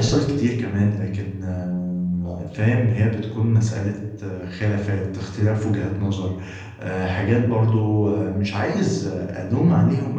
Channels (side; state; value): both; identical; correlation 1.00